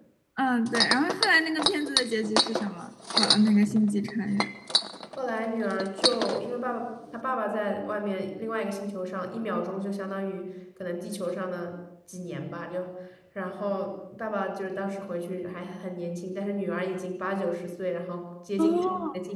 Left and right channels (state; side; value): identical; both; correlation 1.00